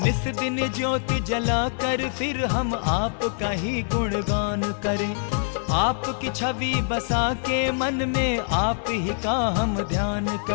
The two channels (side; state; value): right; silent; digital silence